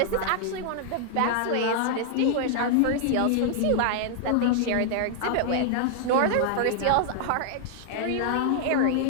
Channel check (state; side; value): different; both; correlation 0.00